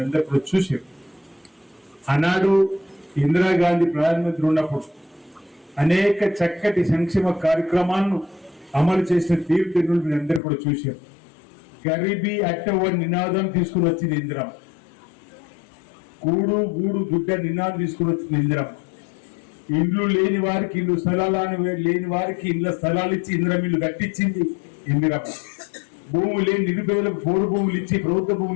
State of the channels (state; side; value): drops out; right; at 10.4 s